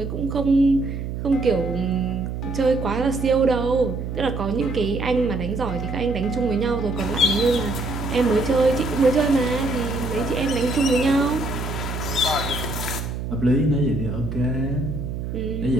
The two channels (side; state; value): right; noise; hum, 5 dB below the sound